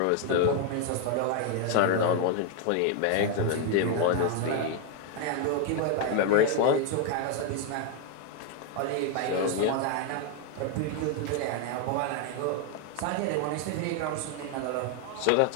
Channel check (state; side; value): different; both; correlation 0.01